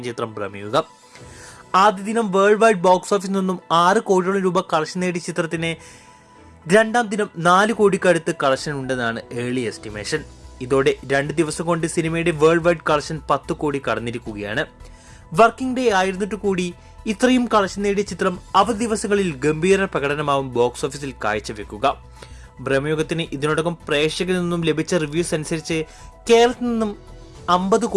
ചിത്രം പ്രമേയുഗം. ആദ്യ ദിനം വേൾഡ് വൈഡ് ബോക്സ് ഓഫീസിൽ നിന്നും 6 കോടിയോളം രൂപ കളക്ഷൻ നേടിയ ചിത്രത്തിന് രണ്ടാം ദിനം 4 കോടിക്കടുത്ത് കളക്ഷൻ ഉണ്ടെന്നാണ് ഏർലി എസ്റ്റിമേഷൻ. ഇതോടെ 2 ദിവസം കൊണ്ട് സിനിമയുടെ വേൾഡ് വൈഡ് കളക്ഷൻ 10 കോടി കടന്നിരിക്കുകയാണ്. വർക്കിംഗ് ഡേ ആയിരുന്നിട്ട് കൂടി ഇത്രയും കളക്ഷൻ നേടിയ ചിത്രം അവധി ദിവസങ്ങളിൽ ഗംഭീര പ്രകടനമാവും ബോക്സ് ഓഫീസിൽ കാഴ്ചവെക്കുക. ബ്രഹ്മയുഗത്തിന് ഇതിനോടകം പ്രേക്ഷകരിൽ നിന്നും ലഭിച്ച റിവ്യൂസ് അനുസരിച്ച് കേരളത്തിൽ നിന്നും 50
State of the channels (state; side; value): identical; both; correlation 1.00